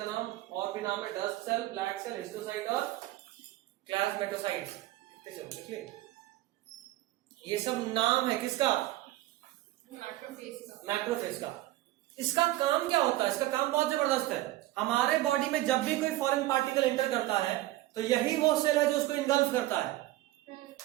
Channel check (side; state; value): left; quieter; 16.9 dB